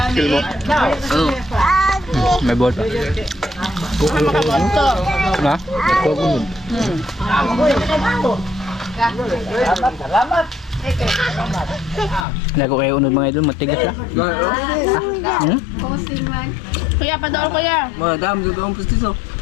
May ball pa. Ha? Lago kayo unod mga idol, matigas na. Hmm? Kuya, padol kuya. Madam, dito ang pustiso.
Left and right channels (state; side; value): drops out; right; at 12.2 s